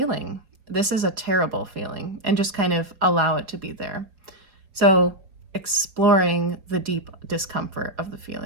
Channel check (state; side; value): late; left; 4.9 ms